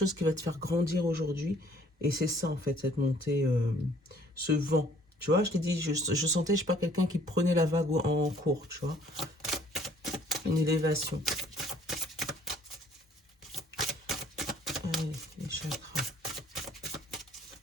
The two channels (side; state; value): both; normal; correlation 0.59